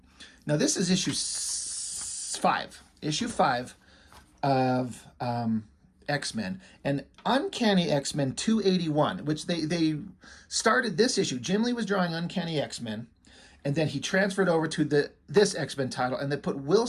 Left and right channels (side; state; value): both; identical; correlation 1.00